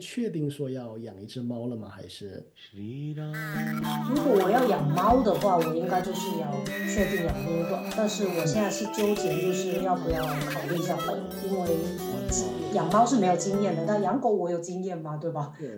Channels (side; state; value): both; identical; correlation 1.00